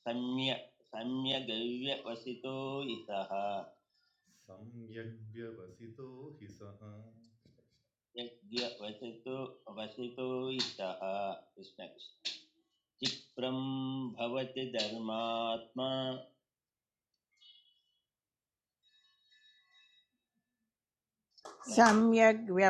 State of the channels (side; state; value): both; identical; correlation 1.00